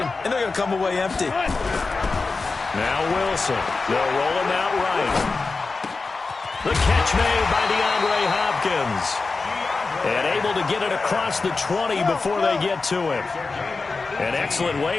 and they're going to come away empty. Now Wilson. They'll roll him out right. The catch made by DeAndre Hopkins. And able to get it across the 20 before they get to him. An excellent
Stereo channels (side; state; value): right; quieter; 4.0 dB